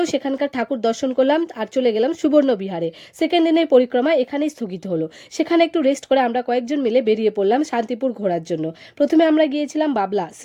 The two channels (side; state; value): both; identical; correlation 1.00